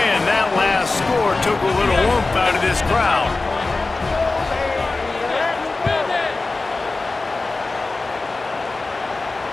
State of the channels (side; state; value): right; quieter; 3.5 dB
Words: and that last score took a little oomph out of this crowd.